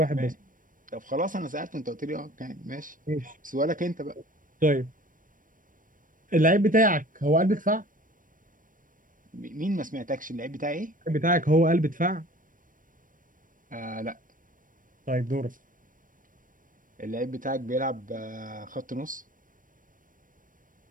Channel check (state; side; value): late; left; 0.39 ms